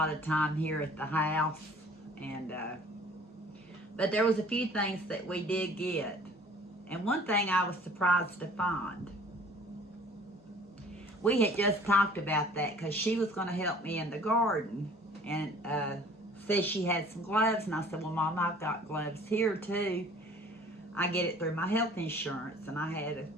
of time here at the house, and but there was a few things that we did get. And one thing I was surprised to find. We had just talked about that because she was going to help me in the garden, and said she had some gloves, and I said, well, Mom, I've got gloves here too. I get it through my health insurance, and I had a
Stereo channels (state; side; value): normal; both; correlation 0.51